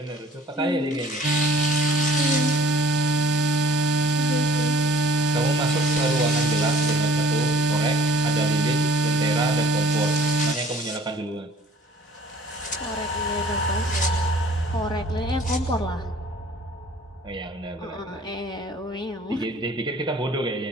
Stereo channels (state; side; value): normal; both; correlation 0.53